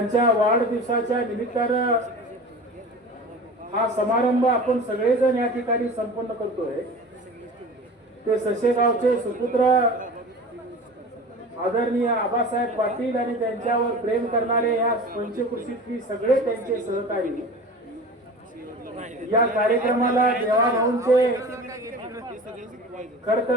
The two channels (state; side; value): normal; both; correlation 0.36